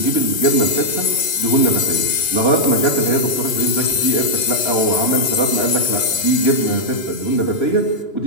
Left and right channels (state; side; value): late; right; 2.9 ms